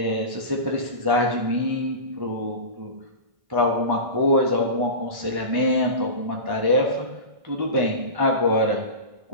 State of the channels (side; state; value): left; late; 1.5 ms